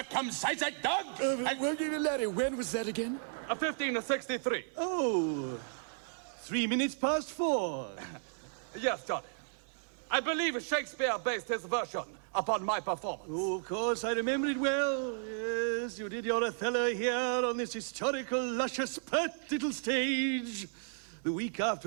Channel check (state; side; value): silent; left; 55 dB below the other